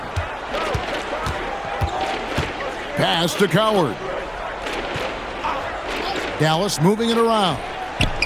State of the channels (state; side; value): identical; both; correlation 1.00